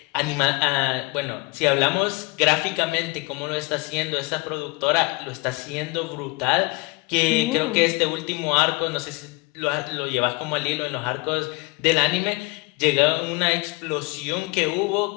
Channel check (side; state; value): right; quieter; 26.9 dB